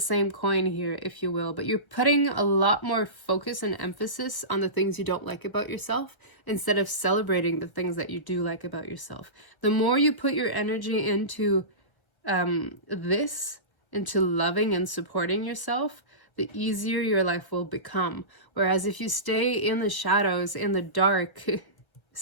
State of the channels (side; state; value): right; late; 1.1 ms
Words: coin here, if you will, but you're putting a lot more focus and emphasis on the things you don't like about yourself instead of celebrating the things that you do like about yourself. The more you put your energy into into loving and supporting yourself, the easier your life will become. Whereas if you stay in the shadows, in the dark,